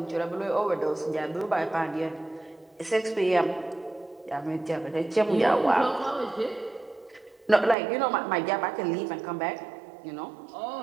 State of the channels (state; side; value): drops out; left; at 7.8 s